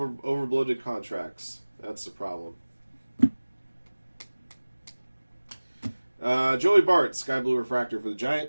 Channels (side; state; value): both; inverted; correlation -1.00